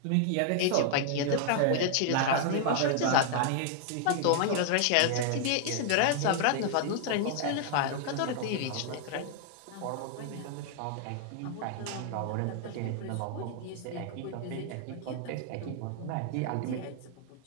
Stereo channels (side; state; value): both; different; correlation 0.00